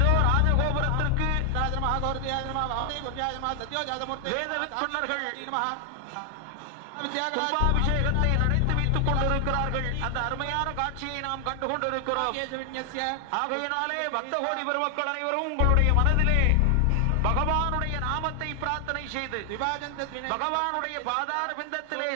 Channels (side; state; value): both; different; correlation 0.00